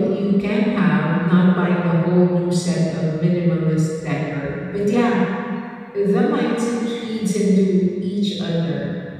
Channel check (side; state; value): both; identical; correlation 1.00